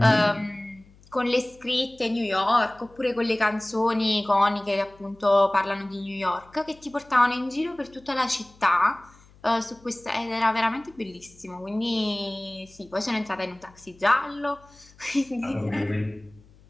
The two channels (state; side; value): noise; left; hum, 27 dB below the sound